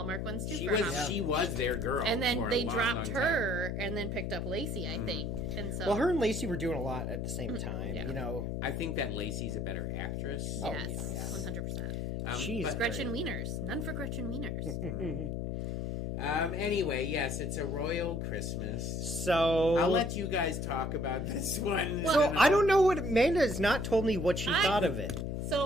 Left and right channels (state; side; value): noise; left; hum, 3 dB below the sound